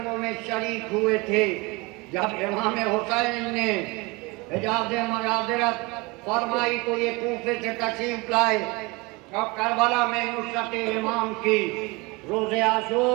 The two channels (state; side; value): quieter; left; 25.4 dB